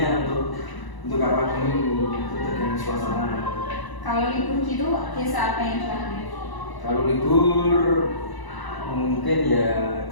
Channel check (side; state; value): right; late; 1.0 ms